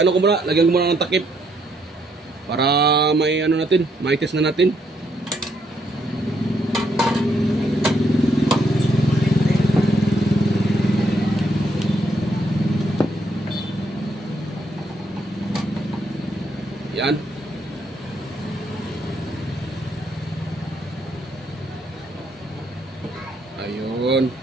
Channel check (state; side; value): normal; both; correlation 0.73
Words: lagyan ko muna ng takip para may may test na natin. Yan. Ayun.